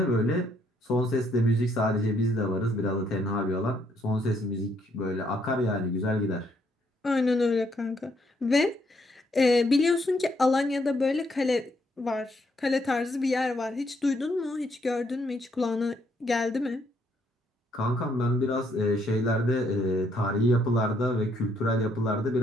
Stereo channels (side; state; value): both; normal; correlation 0.72